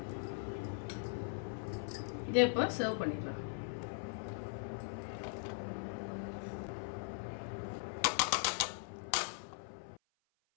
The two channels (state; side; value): silent; right; 51 dB below the other